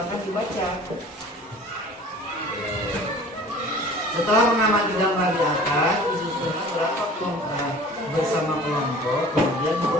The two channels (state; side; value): normal; both; correlation 0.45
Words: dibaca. Setelah mengamati gambar di atas, disusunlah berapa kelompok bersama kelompok, kemudian